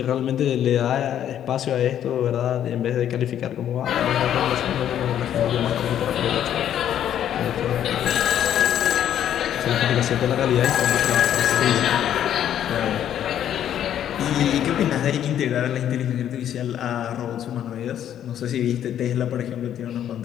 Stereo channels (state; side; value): quieter; right; 10.4 dB